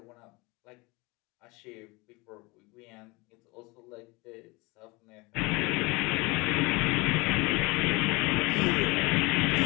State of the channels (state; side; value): quieter; right; 25.2 dB